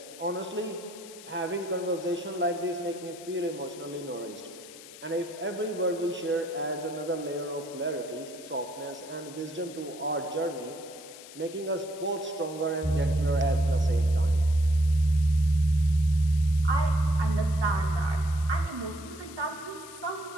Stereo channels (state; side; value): noise; left; hiss, 17 dB below the sound